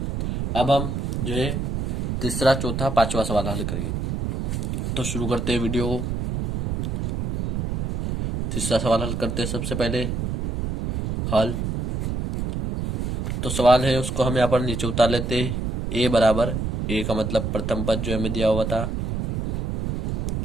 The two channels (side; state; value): right; noise; rumble, 2 dB below the sound